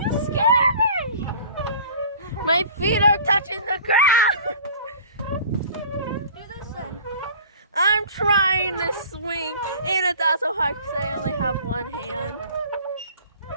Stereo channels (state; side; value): inverted; both; correlation -0.46